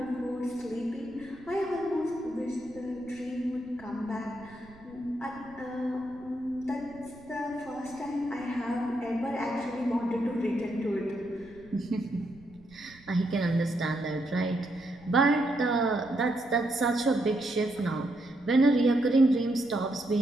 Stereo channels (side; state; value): right; noise; rumble, 24 dB below the sound